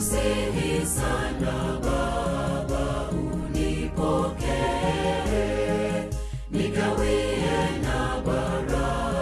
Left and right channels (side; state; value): both; identical; correlation 1.00